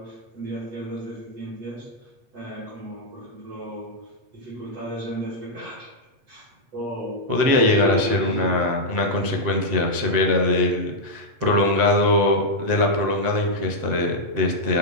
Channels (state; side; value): late; left; 8.4 ms